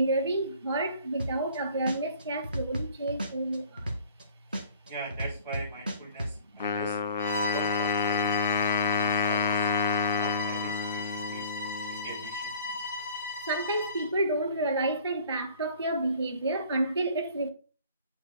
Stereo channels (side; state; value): both; inverted; correlation -0.49